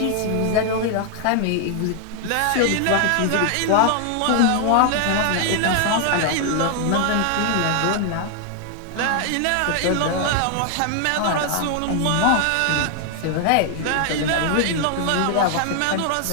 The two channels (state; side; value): different; both; correlation 0.00